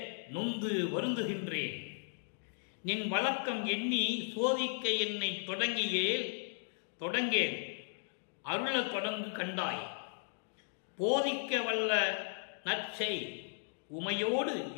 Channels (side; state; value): right; silent; digital silence